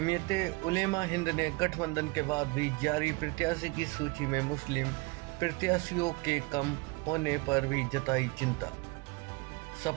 उलेमा हिंद ने गठबंधन के बाद भी जारी प्रत्याशी की सूची में मुस्लिम प्रत्याशियों के कम होने पर भी जताई चिंता।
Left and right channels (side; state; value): left; quieter; 25.2 dB